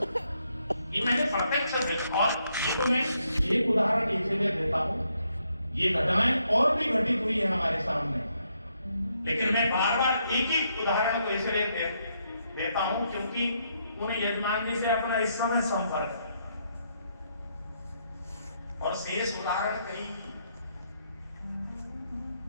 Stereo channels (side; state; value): both; inverted; correlation -0.76